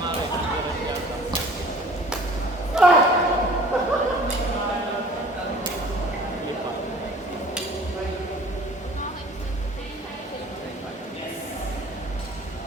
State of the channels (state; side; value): normal; both; correlation 0.49